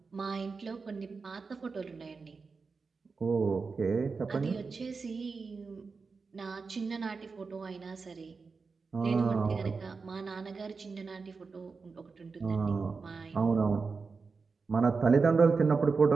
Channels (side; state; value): left; quieter; 4.6 dB